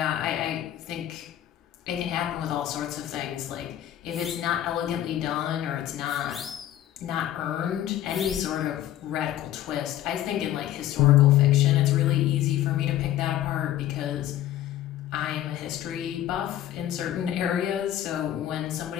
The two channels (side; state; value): right; quieter; 12.5 dB